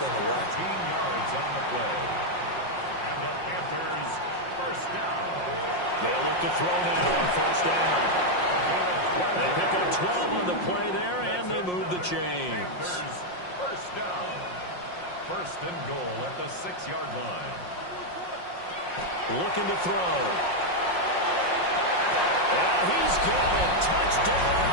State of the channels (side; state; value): right; late; 5.6 ms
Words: away. 15 yards on the play. And the Panthers, first down. They'll look to throw now on 1st down. They pick up 12 on the play there, and they move the chains. First down. 1st and goal at the 6-yard line. Looking to throw. And he's got it. Touchdown,